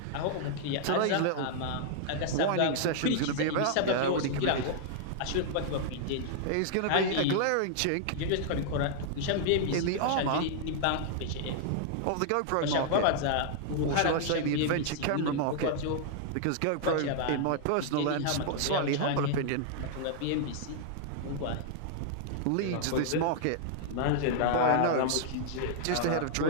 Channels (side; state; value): both; different; correlation -0.01